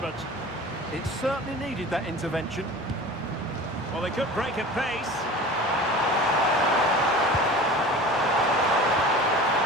It certainly needed that intervention. Well, they could break at pace.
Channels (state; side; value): normal; both; correlation 0.38